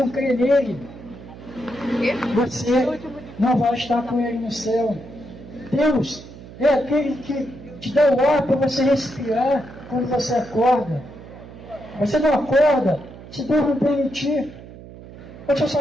crê nele, você não vai estar com ele no céu. Deus é aquele que te dá o ar para você respirar quando você acorda. Você não acorda se Deus não permitir. Você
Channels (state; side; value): noise; right; hum, 16 dB below the sound